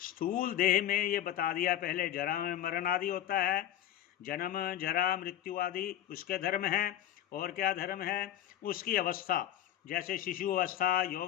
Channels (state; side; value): quieter; right; 11.7 dB